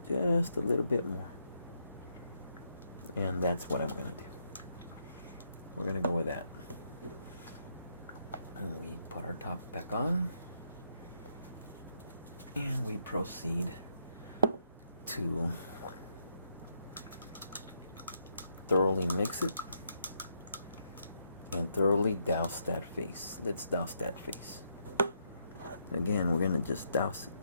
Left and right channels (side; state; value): both; inverted; correlation -0.76